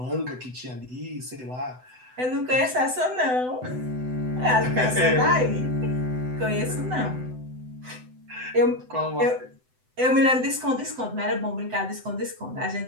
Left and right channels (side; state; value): left; late; 7.9 ms